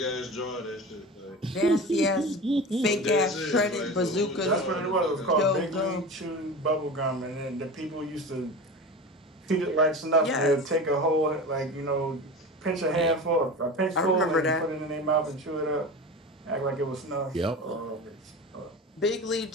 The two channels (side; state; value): both; normal; correlation 0.31